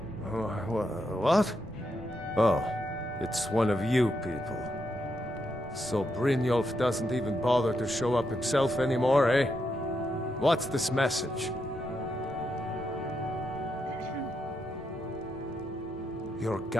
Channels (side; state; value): both; normal; correlation 0.82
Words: Oh, it's one of you people. So Brynjolf doesn't even bother to show up himself anymore, eh? What's this message? You're